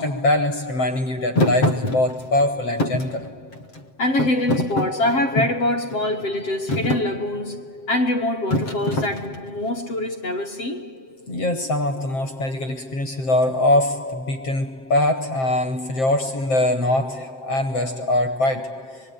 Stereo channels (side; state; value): right; late; 7.6 ms